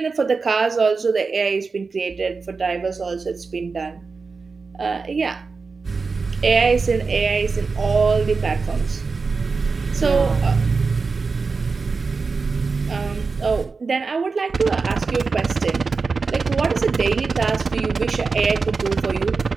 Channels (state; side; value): quieter; left; 4.5 dB